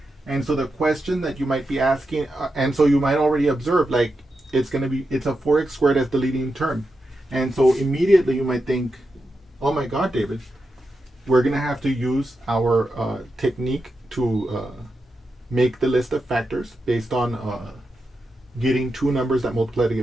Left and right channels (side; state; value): both; normal; correlation 0.88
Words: And so the question that you might be asking, and so you might already observe, like, it's a 4x squared as the leading term. And so immediately you might think, oh my God, David, we're going to have to use our technique to make the list of factors based on getting two numbers that multiply to